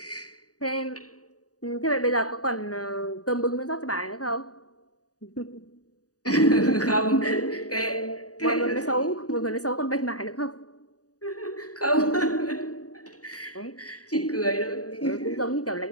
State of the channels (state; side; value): late; right; 0.67 ms